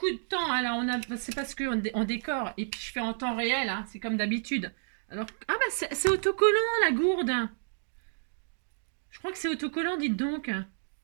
de temps, hein, là. C'est parce qu'on décore. Et puis, je fais en temps réel, hein, c'est comme d'habitude. Alors, ah bah, c'est autocollant, la gourde. Je crois que c'est autocollant, dites donc.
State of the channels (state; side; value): silent; left; digital silence